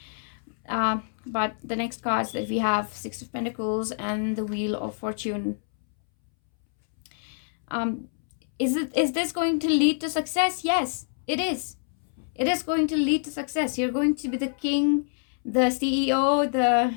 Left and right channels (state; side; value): silent; right; 61 dB below the other